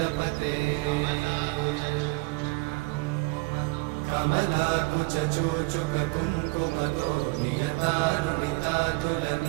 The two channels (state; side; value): quieter; left; 27.1 dB